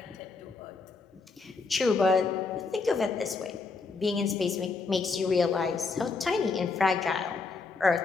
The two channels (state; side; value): quieter; right; 4.3 dB